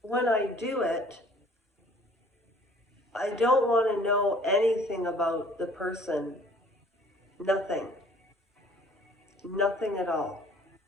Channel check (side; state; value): both; normal; correlation 0.54